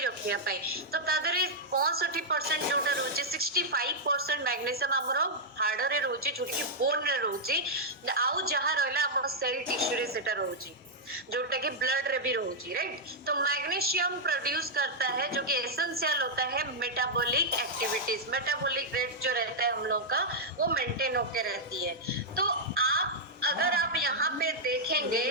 रखिया पाई। तो तादरे 65% जोटा रोचे, 65% मैग्नीशियम हमरो हाड़ रे रोचे, जोटा कि बोन रे रोचे, आउ जहां रहला हमरो सेल टिश्यू रे सेटा रोचे, जोटा कि ब्लड रे भी रोची, राइट। तो मैग्नीशियम प्रोड्यूस करता है, जो कि एसेंशियल होता है मेटाबॉलिक एक्टिविटीज, मेटाबॉलिक रेट जो रहता है हम लोग का, वो मेंटेन होके रहती है। तो आप अगर आप यहाँ पे देखेंगे,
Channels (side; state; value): both; normal; correlation -0.05